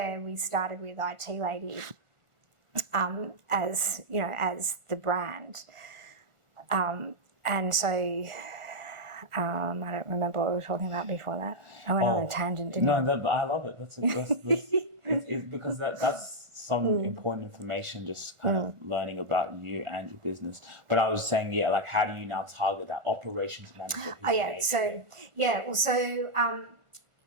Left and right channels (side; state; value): left; late; 1.4 ms